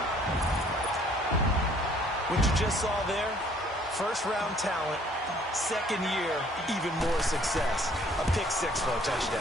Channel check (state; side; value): normal; both; correlation 0.59